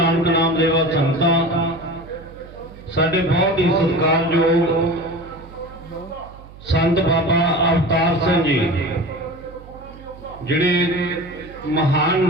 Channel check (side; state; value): right; noise; hum, 19 dB below the sound